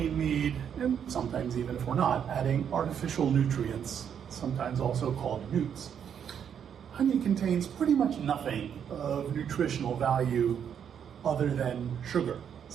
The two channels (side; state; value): left; quieter; 8.3 dB